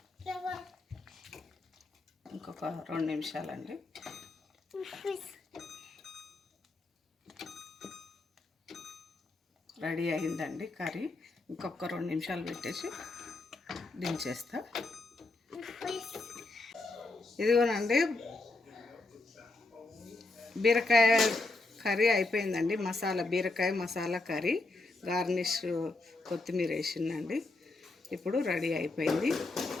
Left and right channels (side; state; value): right; quieter; 3.2 dB